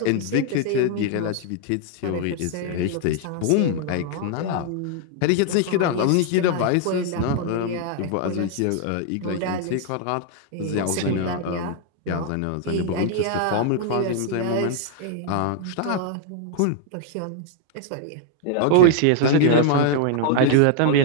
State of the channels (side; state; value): both; different; correlation 0.00